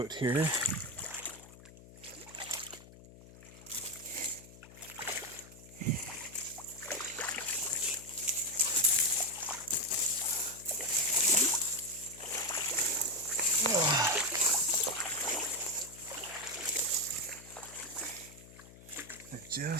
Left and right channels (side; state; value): left; noise; hum, 19 dB below the sound